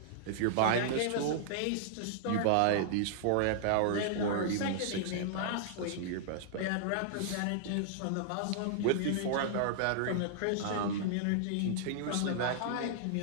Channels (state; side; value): different; both; correlation -0.01